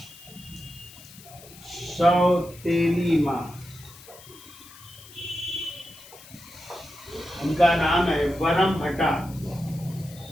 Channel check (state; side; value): noise; left; hiss, 20 dB below the sound